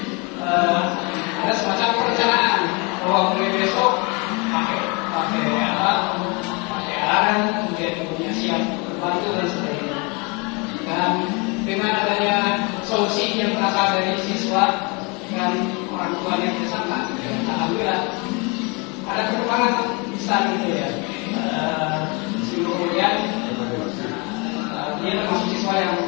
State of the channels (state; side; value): quieter; right; 30.0 dB